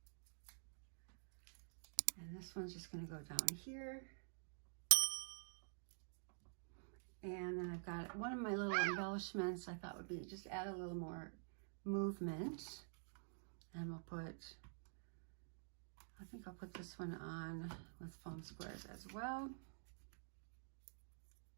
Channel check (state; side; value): silent; left; digital silence